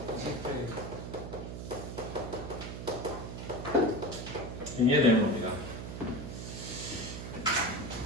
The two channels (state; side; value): noise; right; hum, 7 dB below the sound